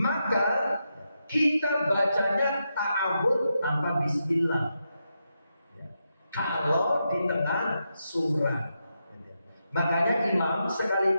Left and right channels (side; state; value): both; inverted; correlation -0.85